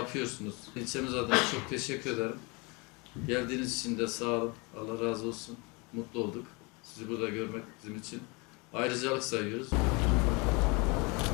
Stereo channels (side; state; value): right; quieter; 28.3 dB